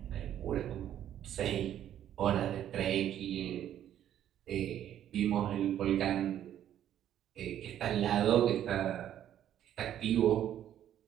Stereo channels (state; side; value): quieter; left; 10.9 dB